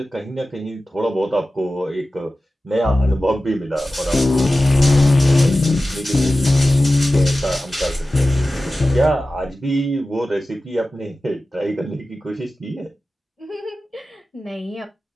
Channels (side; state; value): both; normal; correlation 0.95